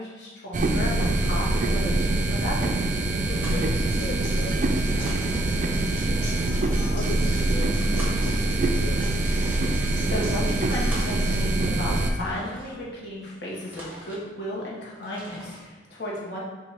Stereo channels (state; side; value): normal; both; correlation 0.74